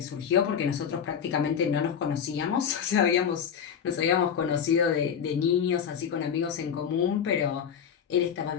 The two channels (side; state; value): right; quieter; 7.8 dB